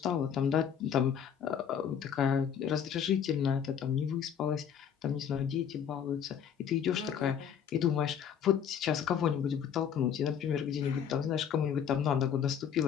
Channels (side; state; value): right; quieter; 8.3 dB